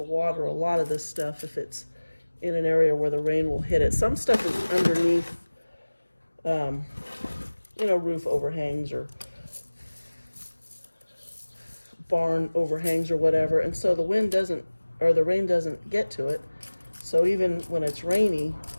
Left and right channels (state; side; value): inverted; both; correlation -1.00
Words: a lot of this stuff if it's in an area where the rain will hit it. Some stuff is underneath, roof overhangs or barn overhangs or whatever, and so the wind doesn't, or the rain doesn't get to it. So even when it's rainy,